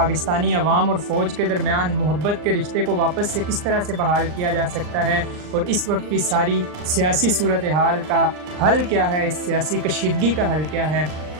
عوام اور فوج کے درمیان محبت کے رشتے کو واپس سے کس طرح سے بحال کیا جا سکتا ہے، اور اس وقت کی ساری سیاسی صورتحال کا حل کیا ہے، اس سیاسی کشیدگی کا حل کیا ہے۔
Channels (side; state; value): left; late; 39 ms